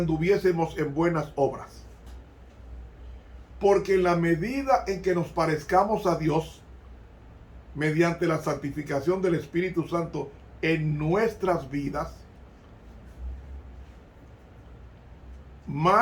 en buenas obras? Porque en la medida en que nos parezcamos a Dios, mediante la santificación del Espíritu Santo en nuestras vidas,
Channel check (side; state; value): both; identical; correlation 1.00